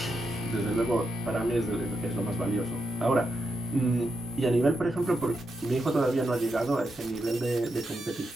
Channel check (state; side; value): normal; both; correlation 0.84